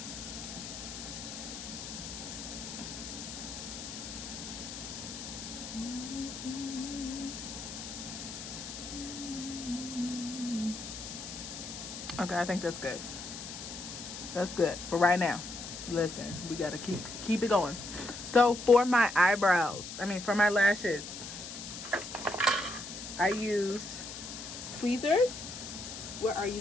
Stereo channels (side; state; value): left; noise; hiss, 9 dB below the sound